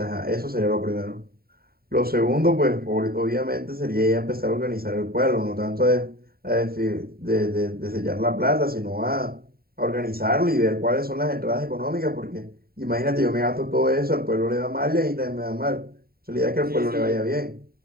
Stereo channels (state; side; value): late; left; 0.44 ms